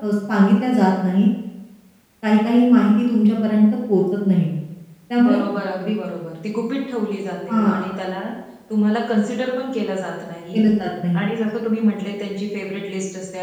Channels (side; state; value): both; identical; correlation 1.00